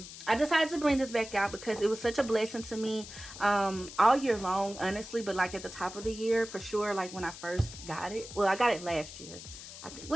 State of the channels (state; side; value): noise; left; hiss, 13 dB below the sound